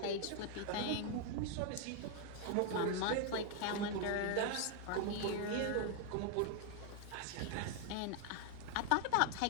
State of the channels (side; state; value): both; different; correlation 0.00